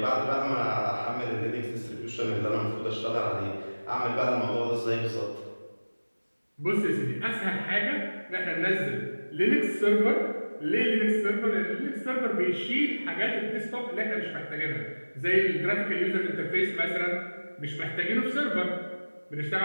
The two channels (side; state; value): both; inverted; correlation -1.00